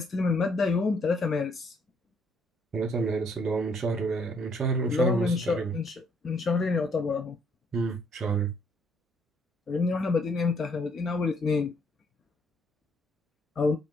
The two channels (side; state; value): both; normal; correlation 0.68